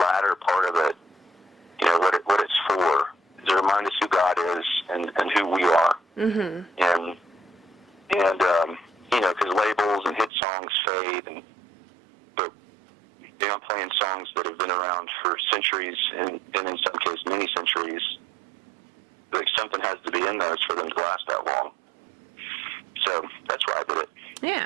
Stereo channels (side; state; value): left; drops out; at 10.3 s